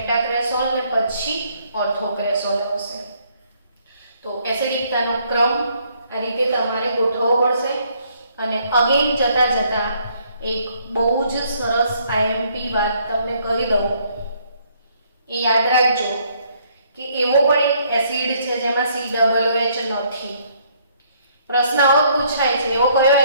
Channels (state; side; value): inverted; both; correlation -0.66